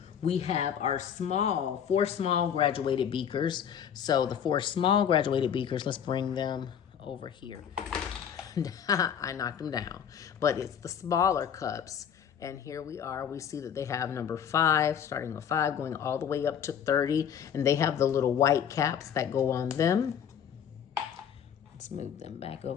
We have our 4 small graduated beakers. So the 4 small graduated beakers, let's bring them over here. I knocked them down, but it's the smaller cups. And here we are, we see that they have number 5, starting with 5, going all the way up to 30. And they have the little white caps that go on them. Let's move them back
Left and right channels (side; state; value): right; quieter; 8.5 dB